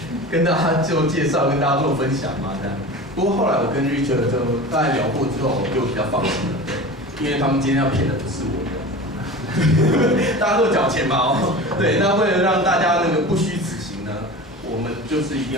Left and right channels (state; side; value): normal; both; correlation 0.33